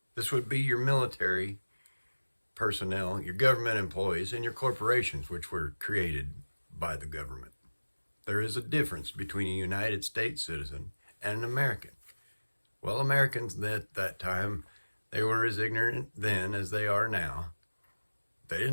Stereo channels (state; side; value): inverted; both; correlation -1.00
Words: This would be your military personnel, your government employees, and your corporations, which were created by the government. There is a difference between a United States citizen and an American. Well, Americans at that time, they were as ignorant then as they are now. They